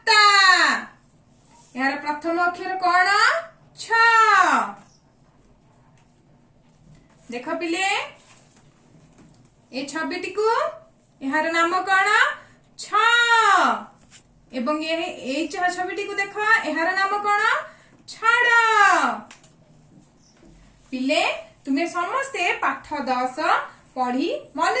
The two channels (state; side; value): identical; both; correlation 1.00